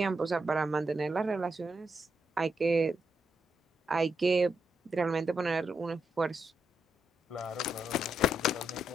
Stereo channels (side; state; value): both; normal; correlation 0.81